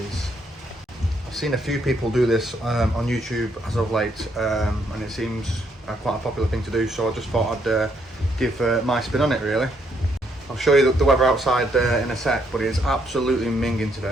I've seen a few people do this on YouTube as of late, and it seems quite a popular thing to do, so I just thought I'd give my spin on it, really. I'll show you the weather outside in a sec, but it is absolutely minging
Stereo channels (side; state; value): both; normal; correlation 0.73